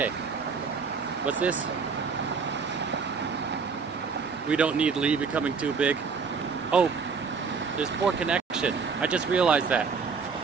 what's this? We don't need Lee becoming too big. Oh, there's poor connection. I just realized that.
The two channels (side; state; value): left; quieter; 5.3 dB